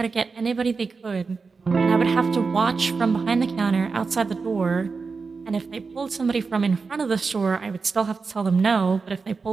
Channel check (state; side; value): quieter; left; 4.6 dB